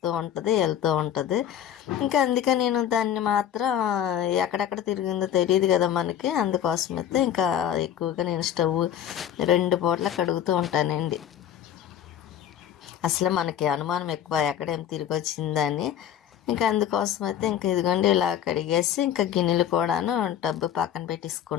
ఉంటుంది వెళ్తూ ఉంటుంది. ఇంకా అందుకే నేను దాన్ని మాత్రం ఎక్కడెక్కడ తిరిగిందో తెలియదు కదా మనకి. అందుకోసమైతే ఇంకా ఎక్కువగా నేను స్టవ్ 2 పూటలు కడుగుతూ ఉంటానండి. అసలు మనకి అనుమానం ఎక్కువ ఎక్కడేం తిరిగి వచ్చిందని. ఇంకా అందుకోసం అయితే ఇంకా ఇదిగోండి ఇలా కడిగేసి ఇంకా గిన్నెలు కూడాను టబ్బు పక్కన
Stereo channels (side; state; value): right; quieter; 9.9 dB